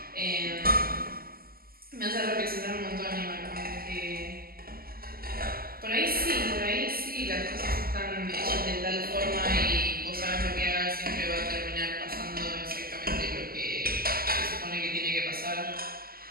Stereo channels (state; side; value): late; left; 0.43 ms